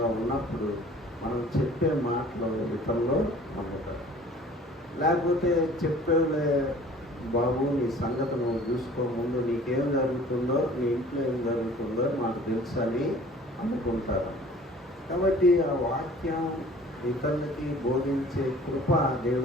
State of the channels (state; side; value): normal; both; correlation 0.49